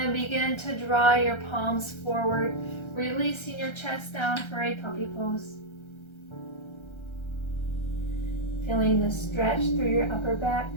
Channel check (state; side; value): late; right; 1.3 ms